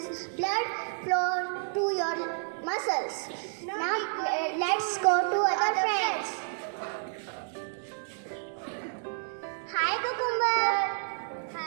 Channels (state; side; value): silent; left; digital silence